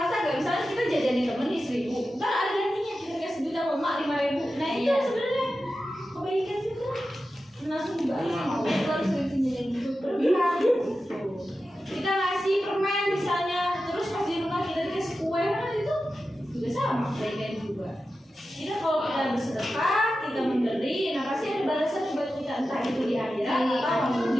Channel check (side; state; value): both; normal; correlation 0.92